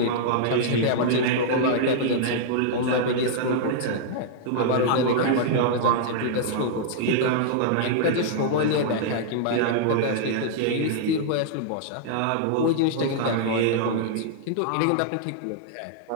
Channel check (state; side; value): different; both; correlation -0.01